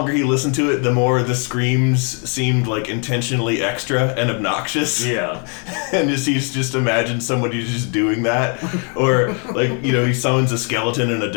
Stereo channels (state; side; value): quieter; right; 38.5 dB